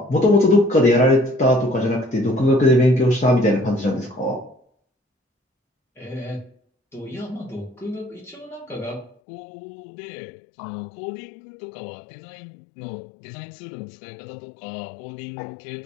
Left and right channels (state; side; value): drops out; right; at 9.2 s